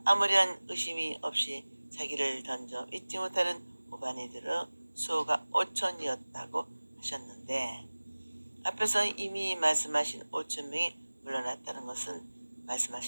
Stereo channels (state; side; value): inverted; both; correlation -1.00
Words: 아무런 의심이 없이 자기를 던져 잊지 못하는 우바니들의 수호가 5천이었다고 하셨는데 앞에서 이미 말씀하신 5,000명이 물러났다는 것은